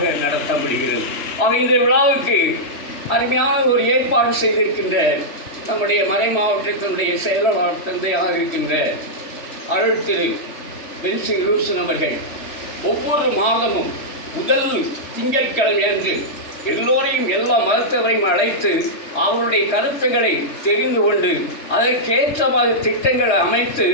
நடத்த முடிகிறது. இந்த விழாவுக்கு அருமையான ஒரு ஏற்பாடு செய்திருக்கின்ற நம்முடைய மறை மாவட்டத்தினுடைய செயலாளர் தந்தையாக இருக்கின்ற அருள் திரு பென்சிங் லூசன் அவர்கள் ஒவ்வொரு மாதமும் முதல் திங்கட்கிழமை அன்று எல்லோரையும் எல்லா மதத்தவரையும் அழைத்து அவருடைய கருத்துக்களை தெரிந்து கொண்டு அதற்கேற்றமாக திட்டங்களை அமைத்து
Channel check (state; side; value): late; right; 3.3 ms